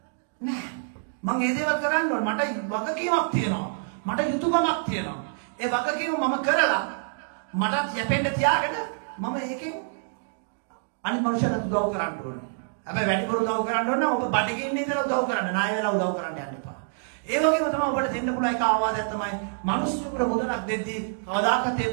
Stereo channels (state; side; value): silent; left; digital silence